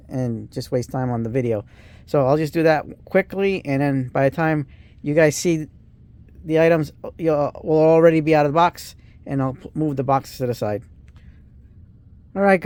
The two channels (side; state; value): both; identical; correlation 1.00